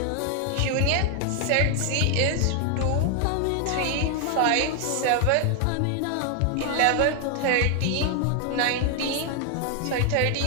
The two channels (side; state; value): both; different; correlation 0.00